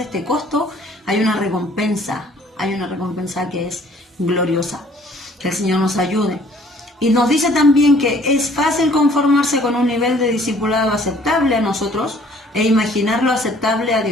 este costo, hay una recompensa que es gloriosa. Que el Señor nos ayude. Y nos dice también que es fácil conformarse con un nivel de discipulado aceptable a nosotros e imaginarlo aceptable a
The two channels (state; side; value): normal; both; correlation 0.57